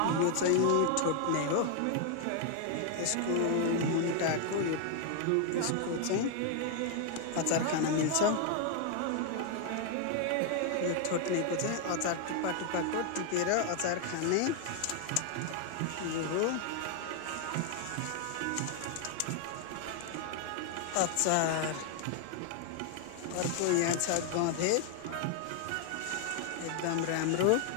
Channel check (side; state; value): both; different; correlation 0.00